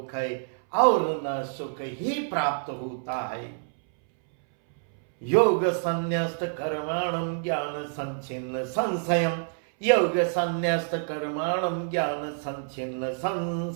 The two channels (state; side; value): silent; left; 60 dB below the other